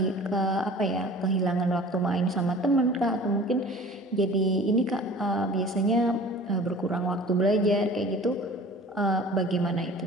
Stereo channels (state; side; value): normal; both; correlation 0.44